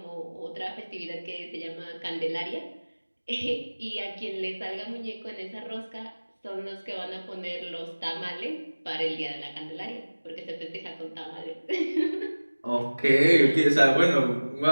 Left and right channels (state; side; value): inverted; both; correlation -1.00